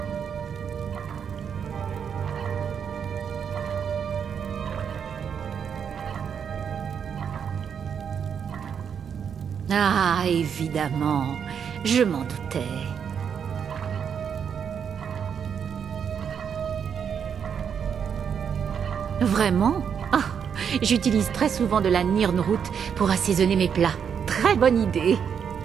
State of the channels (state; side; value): quieter; left; 7.4 dB